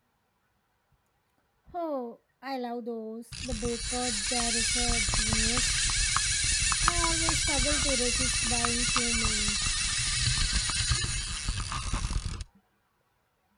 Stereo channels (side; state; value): both; identical; correlation 1.00